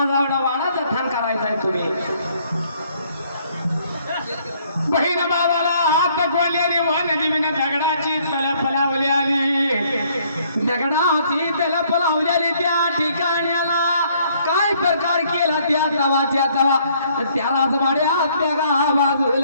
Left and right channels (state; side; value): inverted; both; correlation -0.64